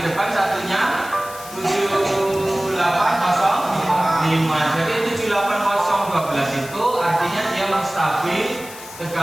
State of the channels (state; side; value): noise; left; hiss, 15 dB below the sound